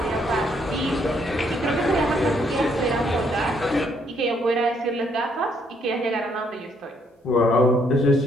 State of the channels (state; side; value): normal; both; correlation 0.70